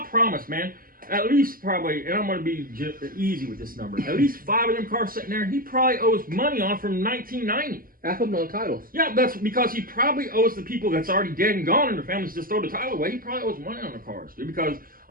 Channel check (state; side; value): late; left; 0.42 ms